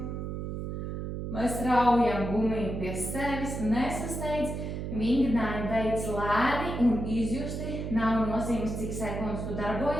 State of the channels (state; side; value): noise; right; hum, 4 dB below the sound